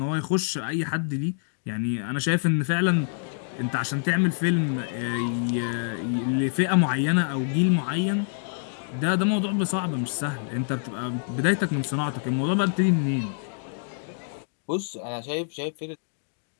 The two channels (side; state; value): right; silent; digital silence